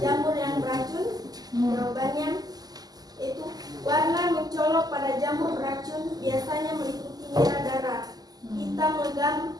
jamur yang beracun? Jawabannya itu warna mencolok pada jamur beracun biasanya meliputi merah darah, hitam legam,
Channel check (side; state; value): left; late; 0.19 ms